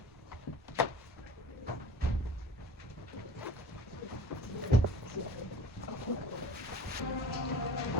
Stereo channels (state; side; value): normal; both; correlation 0.40